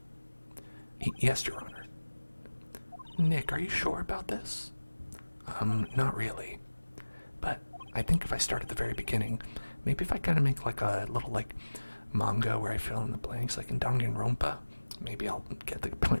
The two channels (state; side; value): inverted; both; correlation -1.00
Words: Yes, Your Honor. Nick, are you sure about this? Not really. But I think if I start at the very beginning, maybe if I kind of make like a little like manga where I fill in the blanks like in Danganronpa, maybe I'll get the